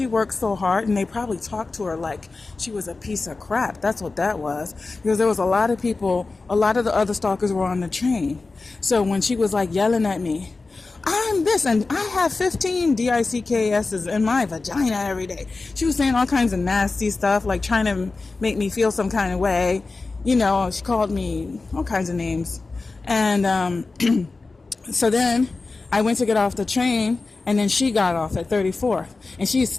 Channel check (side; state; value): right; quieter; 3.7 dB